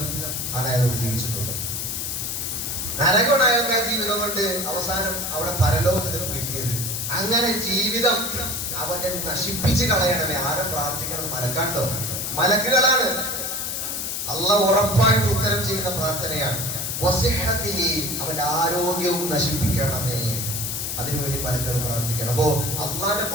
ആണ് അയാളോട് ജീവിച്ചിട്ടുള്ളത്. നരകമാണ് അയാൾക്ക് ആ ജീവിതം കൊണ്ട് അവസാനം അവിടെ പരലോകത്തിൽ കിട്ടിയത്. അങ്ങനെ ജീവിതം അവന്റെ നശിപ്പിച്ച് കളയണമേ. ആരും പ്രാർത്ഥിക്കണം? മലക്കാണ്ടോ? മലക്കുകളാണ്. അള്ളാഹ് ഉറപ്പായിട്ട് ഉത്തരം ചെയ്യുന്ന പ്രാർത്ഥനയാണ്. അവന്റെ ആരോഗ്യവും നശിപ്പിക്കണമേ, അതിനുവേണ്ടി മലക്കുകൾ പ്രാർത്ഥിക്കണം. അപ്പോ അള്ളാന്റെ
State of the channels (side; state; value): left; noise; hiss, 3 dB below the sound